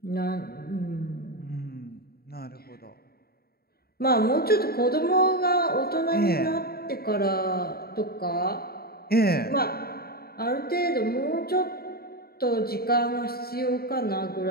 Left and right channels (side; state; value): right; late; 0.45 ms